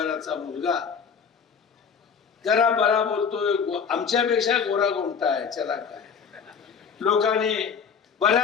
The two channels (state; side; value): quieter; right; 6.5 dB